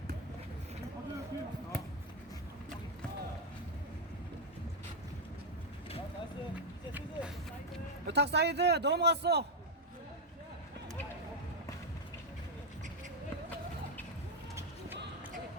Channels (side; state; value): both; normal; correlation 0.02